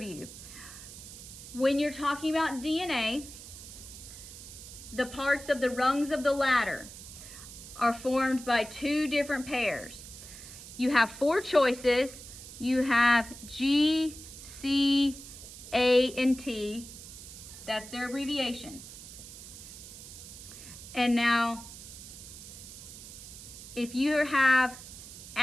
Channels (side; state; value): right; noise; hiss, 14 dB below the sound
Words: When you're talking about DNA, the parts of the rungs of the ladder are formed by two different pairs. You have four choices. You have G, C, A, and T. That's their abbreviations. And now, if you have